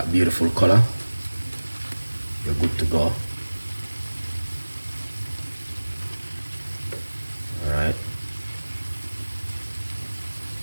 beautiful color, you're good to go. Alright.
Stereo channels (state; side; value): inverted; both; correlation -1.00